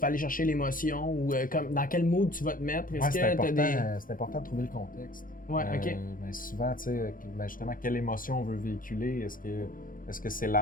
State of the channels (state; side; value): late; right; 0.40 ms